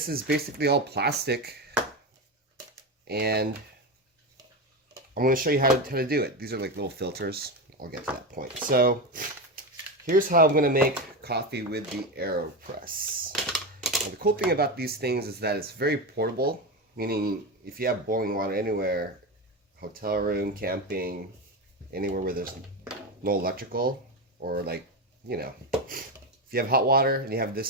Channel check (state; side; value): normal; both; correlation 0.17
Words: is basically all plastic, and I'm going to show you how to do it. These are like little filters. I'll get to that point. So here's how I'm going to make coffee with the Aeropress. Now, the cool thing about these things is that it's very portable, meaning if you have boiling water anywhere, hotel room, camping, anywhere where there's no electrical, or like, you know, if you have hot water and you have